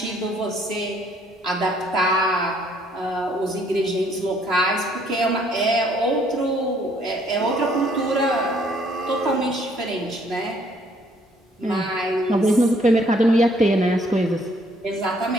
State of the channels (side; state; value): both; normal; correlation 0.64